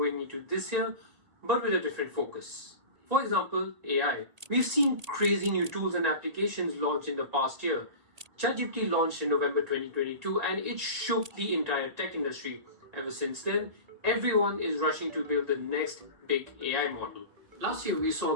into this year, but with a different focus. For example, AI. We've seen crazy new tools and applications launched in the past year. ChatGPT launched in November 2022 and it shook the entire tech industry. Ever since then, everyone is rushing to build the next big AI model. Last year, we saw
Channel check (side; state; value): left; late; 1.8 ms